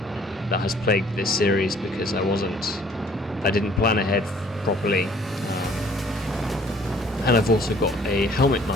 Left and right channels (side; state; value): both; normal; correlation 0.57